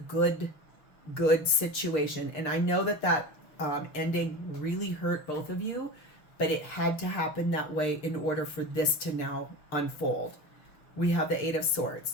situation. And I know that ending really hurt both of you, but it had to happen that way in order for this to now unfold. We have the 8 of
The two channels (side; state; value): right; late; 6.3 ms